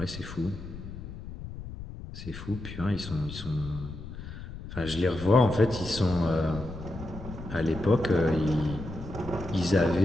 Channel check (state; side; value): noise; left; rumble, 11 dB below the sound